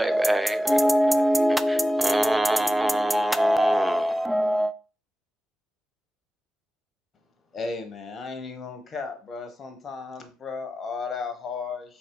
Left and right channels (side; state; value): both; normal; correlation 0.95